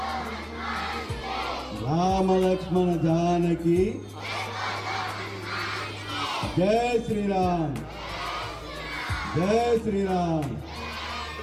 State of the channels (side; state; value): both; identical; correlation 1.00